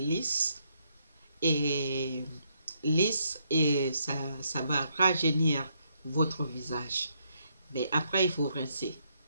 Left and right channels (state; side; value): inverted; both; correlation -0.74